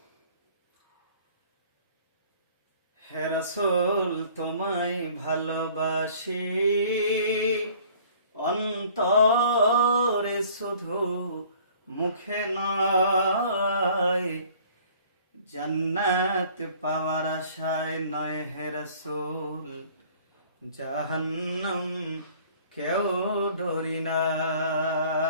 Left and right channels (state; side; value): inverted; both; correlation -0.53